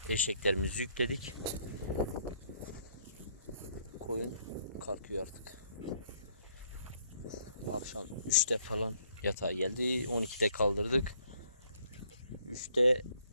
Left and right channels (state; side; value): inverted; both; correlation -0.66